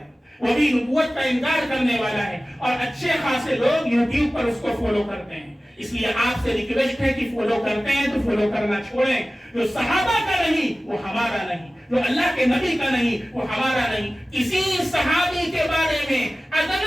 وہ بھی نبوت کا انکار کرنے والا ہے، اور اچھے خاصے لوگ یوٹیوب پر اس کو فالو کرتے ہیں۔ اس لیے آپ سے ریکویسٹ ہے کہ فالو کرتے ہیں تو فالو کرنا چھوڑیں۔ جو صحابہ کا نہیں وہ ہمارا نہیں، جو اللہ کے نبی کا نہیں وہ ہمارا نہیں۔ کسی صحابی کے بارے میں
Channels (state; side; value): normal; both; correlation 0.97